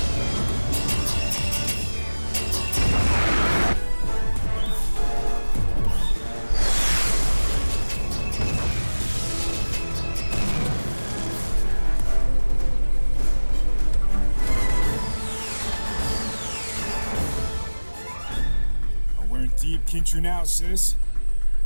Deep Kinchu now, sis.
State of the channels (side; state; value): both; inverted; correlation -1.00